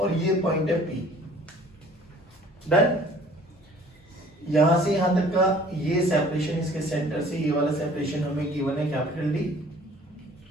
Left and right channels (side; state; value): both; normal; correlation 0.52